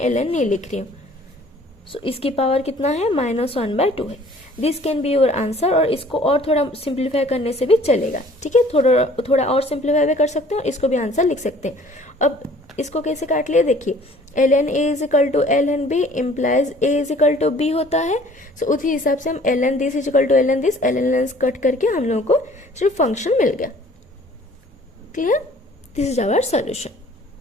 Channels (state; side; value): normal; both; correlation 0.53